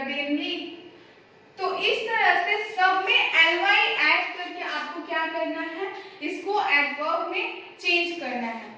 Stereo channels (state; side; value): identical; both; correlation 1.00